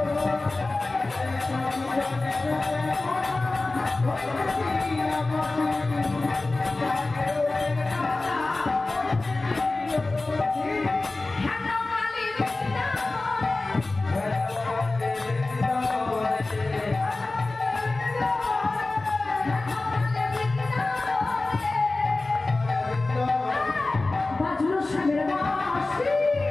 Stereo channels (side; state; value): right; quieter; 3.2 dB